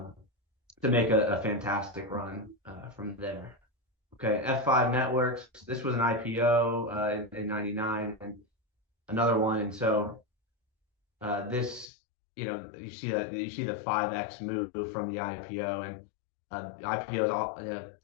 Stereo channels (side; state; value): right; drops out; at 11.9 s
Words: to make a fantastic run from there. Okay, F5 Networks. This was an IPO in 99 and another one. And so this, you see the 5x move from the IPO, and IPO is all